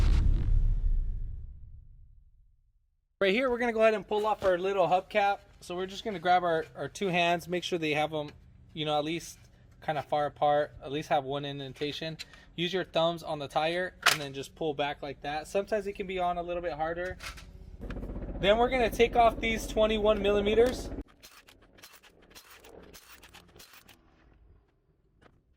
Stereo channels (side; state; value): both; identical; correlation 1.00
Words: Right here, we're going to go ahead and pull off our little hubcap. So we're just going to grab our two hands, make sure they have them, at least kind of far apart, at least have one indentation. Use your thumbs on the tire and then just pull back like that. Sometimes it can be on a little bit harder. Then we're going to take off these 21 millimeters.